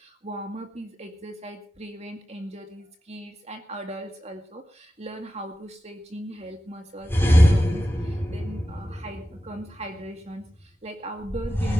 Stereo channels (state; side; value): normal; both; correlation 0.92